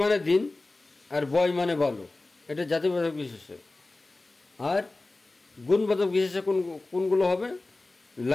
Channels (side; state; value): right; quieter; 3.1 dB